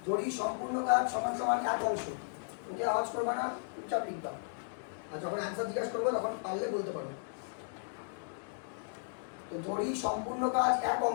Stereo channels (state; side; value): silent; right; digital silence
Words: যদি সম্পূর্ণ কাজ সমান সমান 1 অংশ, ওকে আওয়াজ করবা না, চুপচাপ লিখবা, আর যখন অ্যান্সার জিজ্ঞাসা করবো তখন পারলে বলতে পারো। তো ধরি সম্পূর্ণ কাজ 1